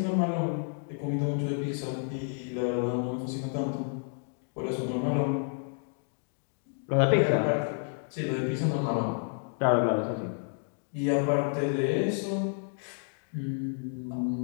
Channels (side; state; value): right; silent; 58 dB below the other